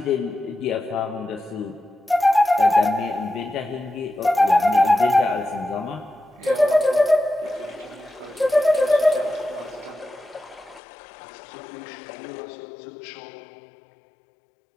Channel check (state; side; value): drops out; right; at 10.8 s